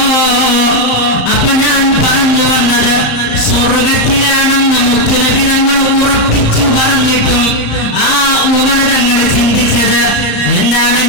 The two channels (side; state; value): right; late; 34 ms